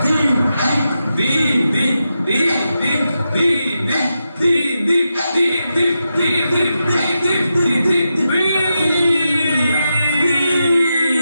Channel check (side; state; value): both; inverted; correlation -0.88